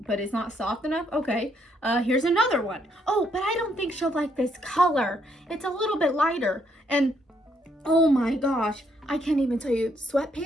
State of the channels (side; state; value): both; normal; correlation 0.72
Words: but it's not soft enough. Okay, here's another one. Oh, but I don't think she'll like this color. It's a little bit lighter. And oh my gosh, I can't even tell you,